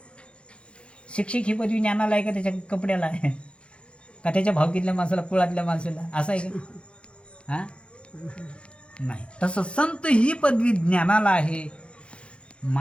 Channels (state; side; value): late; right; 0.058 ms